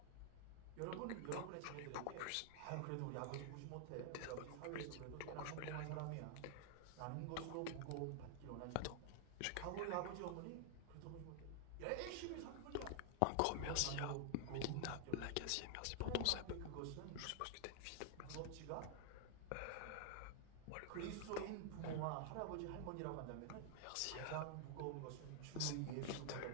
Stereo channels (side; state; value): both; different; correlation 0.00